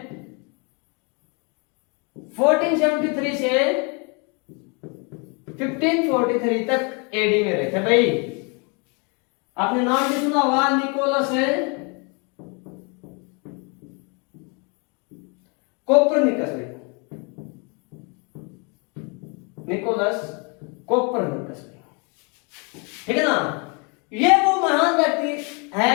1473 से 1543 तक एडी में रहे थे भाई। आपने नाम भी सुना हुआ, निकोलस कोपरनिकस भाई, निकोलस कोपरनिकस भाई। ठीक है ना? ये वो महान व्यक्ति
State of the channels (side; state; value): right; quieter; 33.5 dB